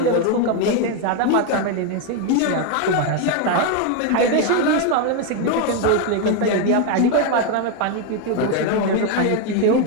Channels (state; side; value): different; both; correlation 0.01